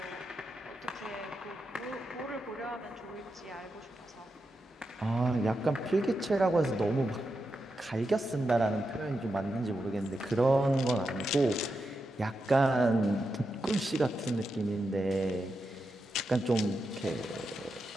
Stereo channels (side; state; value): both; normal; correlation 0.87